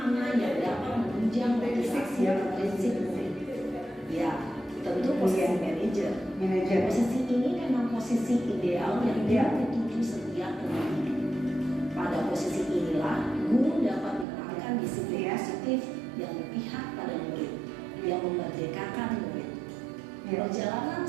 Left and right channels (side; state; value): left; drops out; at 14.2 s